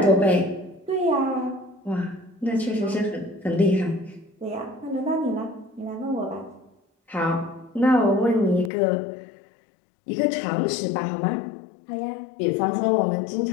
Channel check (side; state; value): right; drops out; at 8.7 s